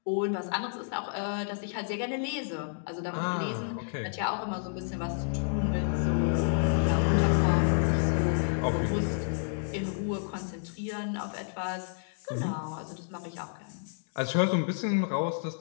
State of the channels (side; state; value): right; silent; digital silence